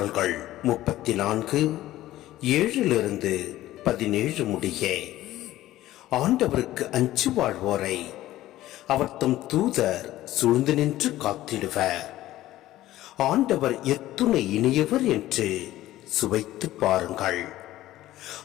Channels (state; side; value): quieter; right; 15.1 dB